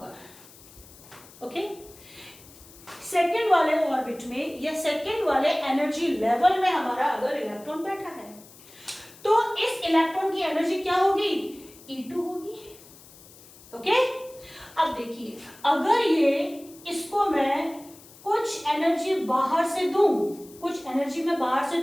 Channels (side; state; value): left; noise; hiss, 22 dB below the sound